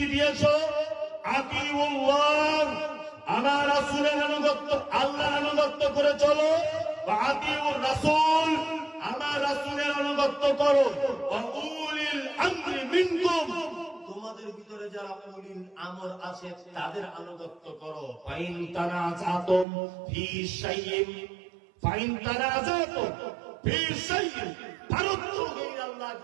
দিয়েছো, আতিউল্লাহ, আমার রাসূলের আনুগত্য, আল্লাহর আনুগত্য করে চলো, ওয়া আতিউর রাসূল, আমার রাসূলের আনুগত্য করো, ওয়া উলিল আমরি মিনকুম, তোমাদের ভিতরে যারা উলিল আমর আছে তাদের আনুগত্য করো। ফাইন তানাজাতুম ফি শাইইন, ফাইন তানাজাতুম ফি শাইইন ফারুদ্দুহু ইলাল্লাহি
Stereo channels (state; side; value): drops out; left; at 19.7 s